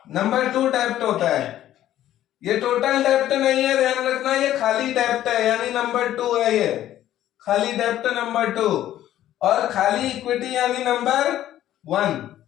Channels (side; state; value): right; quieter; 12.7 dB